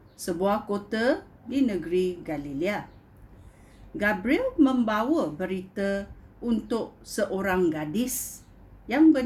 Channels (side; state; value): both; identical; correlation 1.00